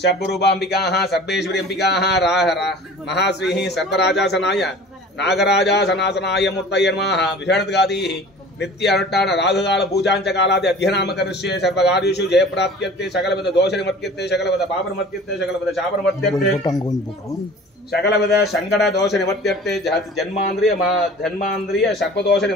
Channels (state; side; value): normal; both; correlation 0.43